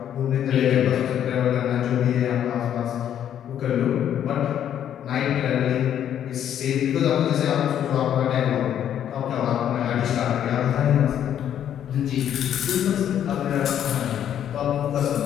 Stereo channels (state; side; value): quieter; right; 10.0 dB